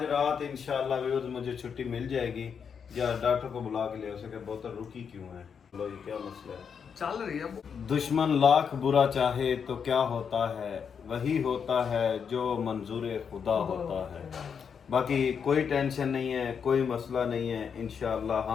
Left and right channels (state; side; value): quieter; right; 6.8 dB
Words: रात इंशाल्लाह व्यूअर्स मुझे छुट्टी मिल जाएगी, या डॉक्टर को बुला के ले हो सके, बोतल रुकी क्यों है, लो ये क्या मसला है। चल रही है। दुश्मन लाख बुरा चाहे तो क्या होता है, वही होता है जो मंजूर खुदा होता है। बाकी कोई टेंशन नहीं है, कोई मसला नहीं है, इंशाअल्लाह